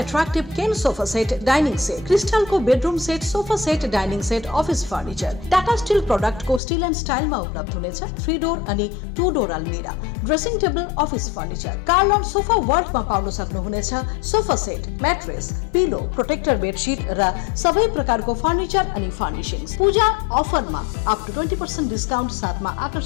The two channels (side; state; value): right; drops out; at 6.6 s